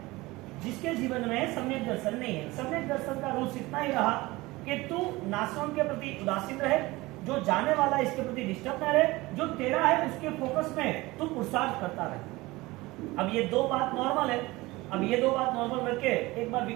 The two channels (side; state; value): left; quieter; 20.8 dB